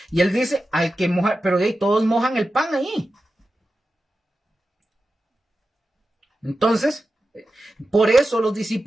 y él dice, al que moja, pero todos mojan el pan ahí. Entonces, por eso los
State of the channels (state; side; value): normal; both; correlation 0.92